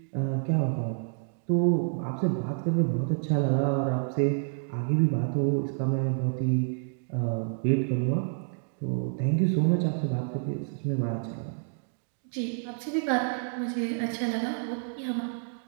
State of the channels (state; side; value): silent; left; digital silence